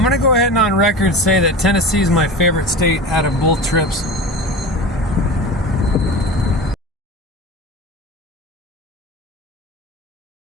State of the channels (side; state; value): both; normal; correlation 0.31